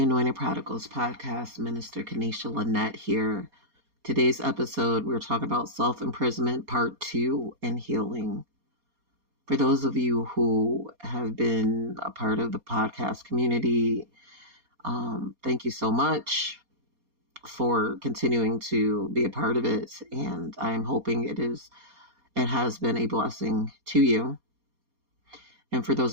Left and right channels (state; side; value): late; left; 4.2 ms